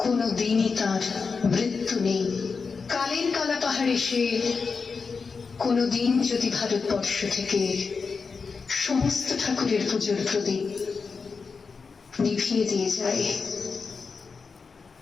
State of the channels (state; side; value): quieter; right; 5.0 dB